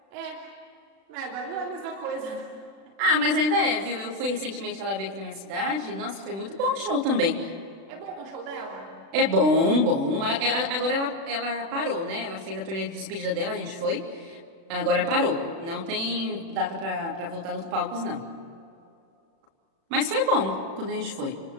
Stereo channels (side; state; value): left; late; 36 ms